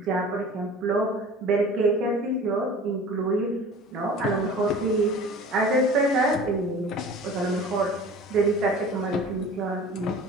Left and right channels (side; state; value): both; normal; correlation 0.41